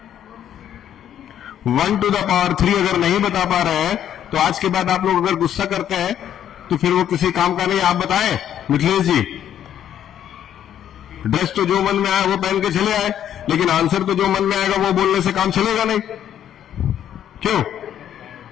1 to the power 3 अगर नहीं बता पा रहे हैं तो आज के बाद आप लोग अगर गुस्सा करते हैं तो फिर वो किसी काम का नहीं। आप बताएं मिथिलेश जी, ड्रेस तो जो मन में आया वो पहन के चले आए, लेकिन आंसर तो जो मन में आएगा वो बोलने से काम चलेगा नहीं। क्यों?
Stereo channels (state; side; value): quieter; right; 10.3 dB